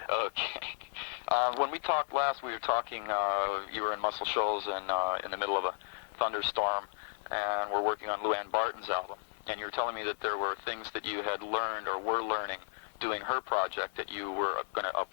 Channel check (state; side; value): silent; right; 55 dB below the other